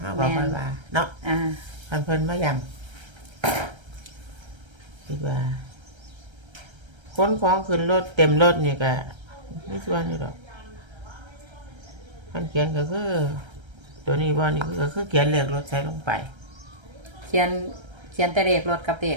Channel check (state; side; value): late; left; 1.3 ms